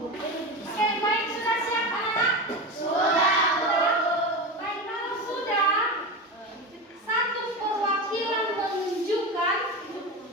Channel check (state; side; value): normal; both; correlation 0.23